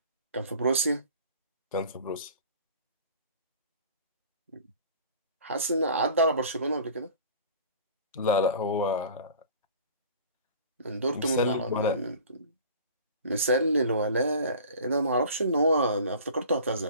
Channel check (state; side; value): inverted; both; correlation -0.43